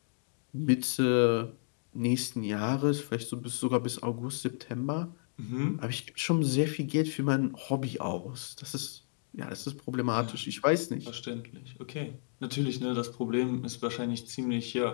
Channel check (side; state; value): right; silent; digital silence